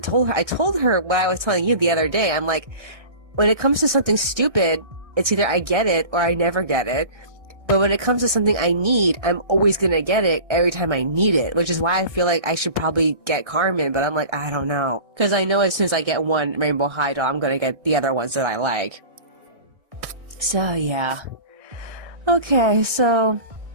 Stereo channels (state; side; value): late; left; 1.6 ms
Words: her what I was telling you the other day. I'm like, when it comes to something stupid, it's either I get it or I never get it. But when it comes to something I need, I'm always gonna get it every time I need it, which is why I feel like I should probably get Carmen, but I'm like, I don't know. Because I know as soon as I get one Rainbow High doll, I'm gonna get the other ones that I like. So, yeah. Okay, so,